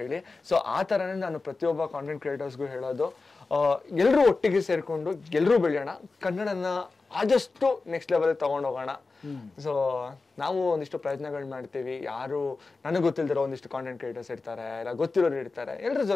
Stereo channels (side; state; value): right; quieter; 3.9 dB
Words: ಸೊ ಆ ತರನೇ ನಾನು ಪ್ರತಿಯೊಬ್ಬ ಕಾಂಟೆಂಟ್ ಕ್ರಿಯೇಟರ್ಸ್ಗೂ ಹೇಳೋದು, ಎಲ್ಲರೂ ಒಟ್ಟಿಗೆ ಸೇರ್ಕೊಂಡು ಎಲ್ಲರೂ ಬೆಳೆಯೋಣ, ಕನ್ನಡನ ಆದಷ್ಟು ನೆಕ್ಸ್ಟ್ ಲೆವೆಲ್ ತಗೊಂಡೋಗೋಣ. ಸೊ ನಾವು ಒಂದಿಷ್ಟು ಪ್ರಯತ್ನಗಳು ಮಾಡ್ತೀವಿ. ಯಾರು ನನಗೆ ಗೊತ್ತಿಲ್ದಿರೋ ಒಂದಿಷ್ಟು ಕಾಂಟೆಂಟ್ ಕ್ರಿಯೇಟರ್ಸ್ ಇರ್ತಾರೆ, ಇಲ್ಲ ಗೊತ್ತಿರೋರು ಇರ್ತಾರೆ, ಎಲ್ಲರ